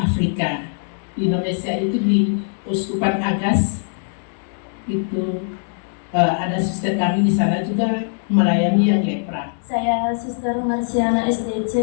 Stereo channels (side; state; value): right; silent; digital silence